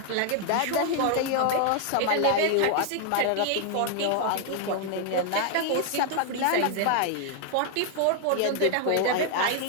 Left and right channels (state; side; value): different; both; correlation 0.00